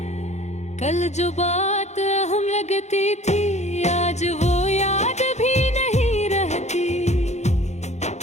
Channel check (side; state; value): right; late; 0.33 ms